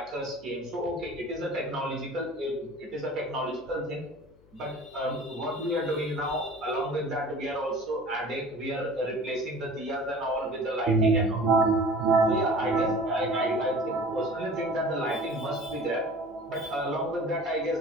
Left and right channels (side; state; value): left; noise; hum, 27 dB below the sound